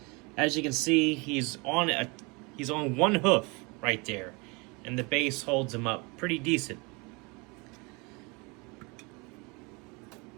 As you can see, he's on one hoof right there, and the base holds him up pretty decent.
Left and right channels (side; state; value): left; quieter; 28.6 dB